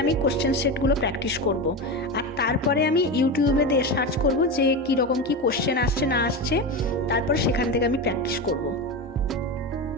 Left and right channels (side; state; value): both; normal; correlation 0.20